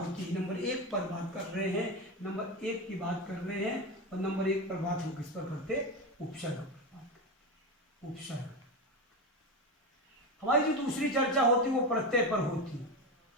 नंबर 1 पर बात कर रहे हैं, नंबर 1 की बात कर रहे हैं, और नंबर 1 पर बात हम किस पर करते, उपसर्ग पर बात करते। उपसर्ग। हमारी जो दूसरी चर्चा होती वो प्रत्यय पर होती,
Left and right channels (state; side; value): normal; both; correlation 0.18